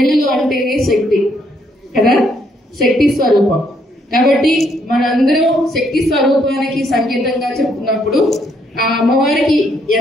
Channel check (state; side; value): normal; both; correlation 0.71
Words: అంటేనే శక్తి కదా, శక్తి స్వరూపం. కాబట్టి మనందరం శక్తి స్వరూపానికి సంకేతంగా చెప్తున్నప్పుడు ఆ అమ్మవారికి